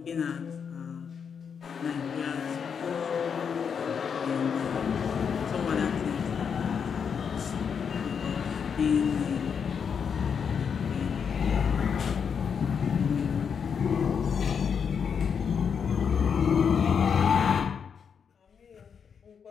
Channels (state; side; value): quieter; right; 6.8 dB